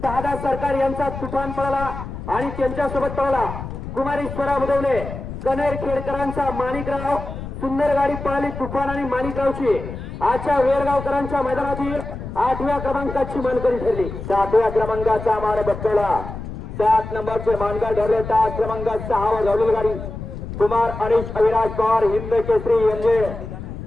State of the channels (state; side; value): noise; left; rumble, 9 dB below the sound